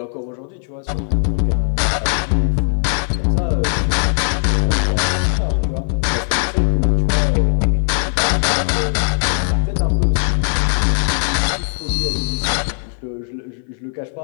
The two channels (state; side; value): silent; right; 55 dB below the other